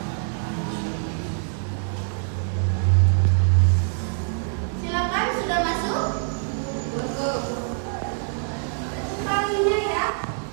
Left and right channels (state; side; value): silent; left; 62 dB below the other